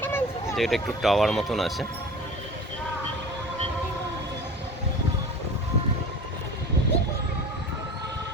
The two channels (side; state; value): both; normal; correlation 0.37